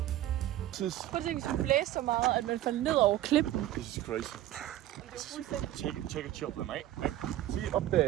Prøv at tænke, hvis vi blæser så meget, at man falder ned over klippen. This is crazy. Take a chopper, mate. See up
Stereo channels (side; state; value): left; quieter; 13.8 dB